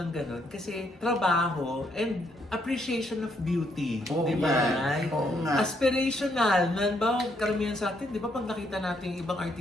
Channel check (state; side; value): normal; both; correlation 0.73